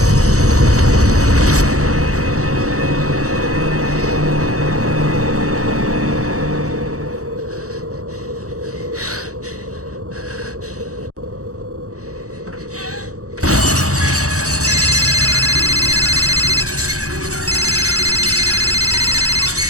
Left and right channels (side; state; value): left; late; 0.65 ms